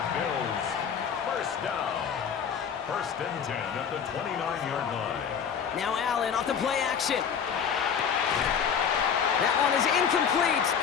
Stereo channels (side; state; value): right; quieter; 7.3 dB